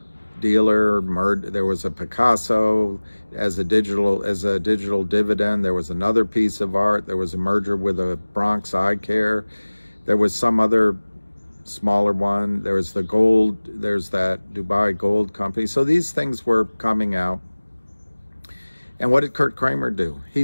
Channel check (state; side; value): inverted; both; correlation -1.00